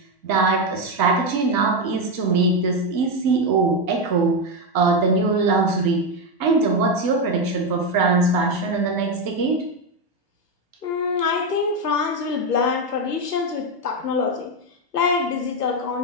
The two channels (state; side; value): late; right; 1.3 ms